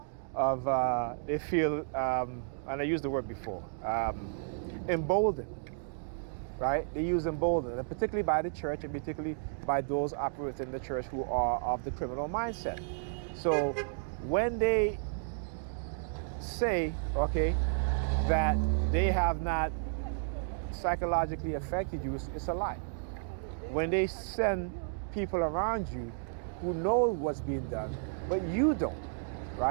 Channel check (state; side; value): silent; left; digital silence